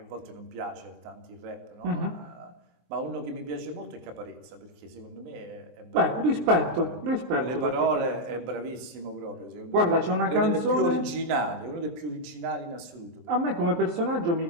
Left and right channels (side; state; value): left; late; 24 ms